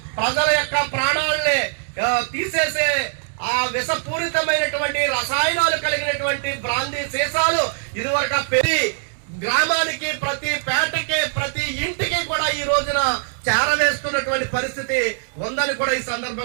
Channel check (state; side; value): silent; left; digital silence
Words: ప్రజల యొక్క ప్రాణాలని తీసేసే ఆ విషపూరితమైనటువంటి రసాయనాలు కలిగినటువంటి బ్రాందీ సీసాలు ఇదివరకు పెరిగి గ్రామానికి, ప్రతి పేటకి, ప్రతి ఇంటికి కూడా ఈ రోజున చేరవేస్తున్నటువంటి పరిస్థితి ఉందని కూడా ఈ